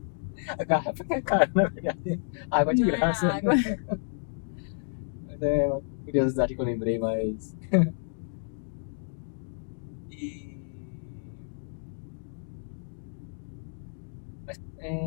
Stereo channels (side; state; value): right; silent; digital silence